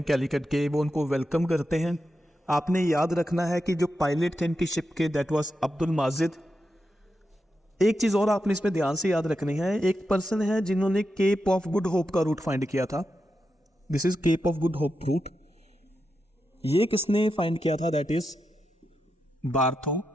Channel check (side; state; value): both; normal; correlation 0.88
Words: कैलिकट के, वो उनको वेलकम करते हैं। आपने याद रखना है कि जो पायलट थे इनकी शिप के, दैट वाज अब्दुल माजिद। एक चीज और आपने इसमें ध्यान से याद रखनी है, एक पर्सन है जिन्होंने केप ऑफ गुड होप का रूट फाइंड किया था। This is cape of good hope route. ये किसने फाइंड किया था? That is